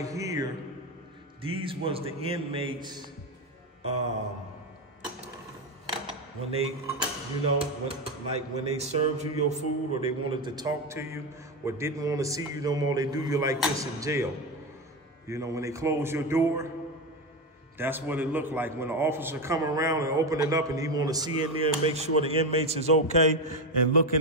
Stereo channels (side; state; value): both; normal; correlation 0.15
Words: here, these was the inmates when they, you know, when they served you your food, or they wanted to talk to you, or didn't want to see you no more, they do you like this in jail. You know, when they close your door, that's what it looked like. When the officer come around and open it up and he want to see in there and make sure the inmates is okay and look